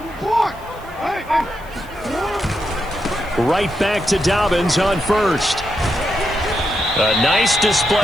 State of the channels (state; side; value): noise; right; hiss, 26 dB below the sound